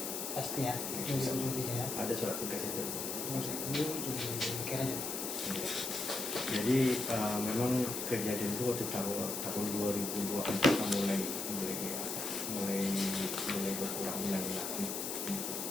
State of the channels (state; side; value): noise; left; hiss, 3 dB below the sound